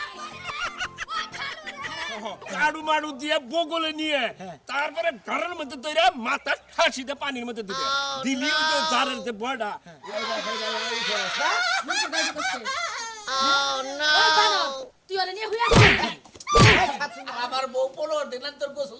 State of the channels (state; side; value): identical; both; correlation 1.00